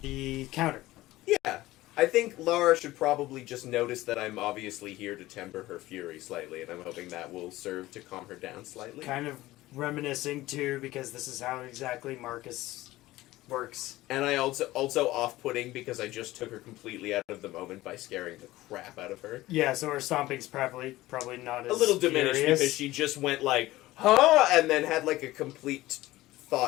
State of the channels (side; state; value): right; quieter; 17.3 dB